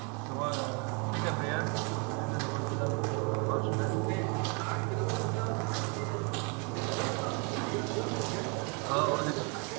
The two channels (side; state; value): left; quieter; 34.0 dB